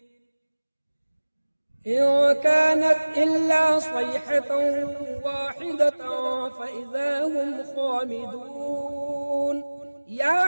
إن كانت إلا صيحة واحدة فإذا هم خامدون يا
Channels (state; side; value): inverted; both; correlation -1.00